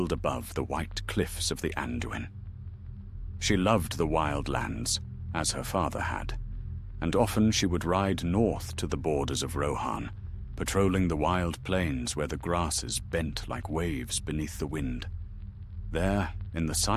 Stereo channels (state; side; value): identical; both; correlation 1.00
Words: above the white cliffs of the Anduin. She loved the wild lands, as her father had, and often she would ride north to the borders of Rohan, patrolling the wild plains where the grasses bent like waves beneath the wind. There, in the